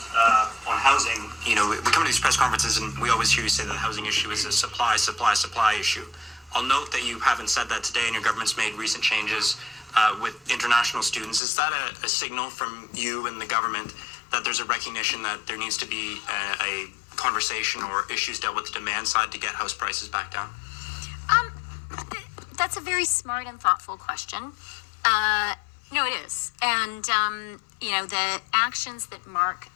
on housing, we come to these press conferences and we always hear you say that the housing issue is a supply issue. I'll note that you haven't said that today, and your government's made recent changes with international students. Is that a signal from you and the government that there's a recognition that there needs to be a conversation or issues dealt with the demand side to get house prices back down? That's a very smart and thoughtful question. No, it is. And, the actions that Mark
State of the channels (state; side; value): drops out; right; at 11.4 s